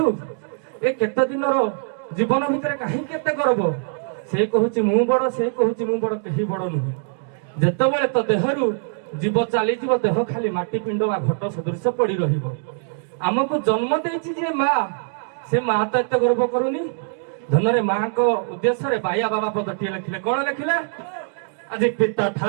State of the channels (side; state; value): left; silent; digital silence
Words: ए केत दिन रो जीवन भितर काहे केते करब से कहूची मु बड़ से कहूची मु बड़ केही बड़ नुहे। जेतेबेले तो देहरु जीव चली जीव देह खाली माटी पिंड बा घट सदृश पड़ी रहिबो। आमको जन्म देछि जे मां से मां तो एते गर्व करूनी। धनरे मां को उद्देश्य रे बाया बाबा पदटी लिखिले कोन लिखिले आज पिता